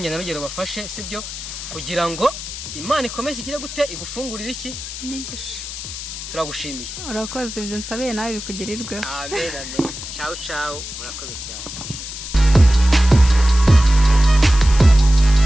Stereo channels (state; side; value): noise; left; hiss, 9 dB below the sound